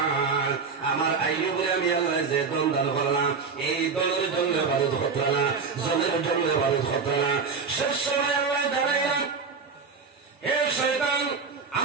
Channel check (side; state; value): left; quieter; 5.1 dB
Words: আমার আইয়ুবরে আমি আল্লাহ যে দন দান করলাম এই দলের জন্য বারুদ হতো না জলের জন্য বারুদ হতো না শেষ সময় আল্লাহ দাঁড়াইলাম হে শয়তান